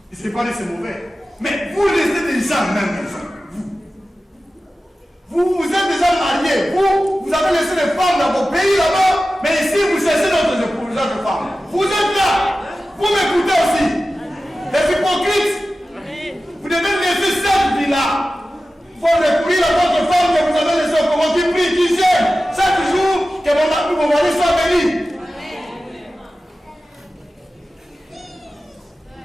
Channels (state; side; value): normal; both; correlation 0.95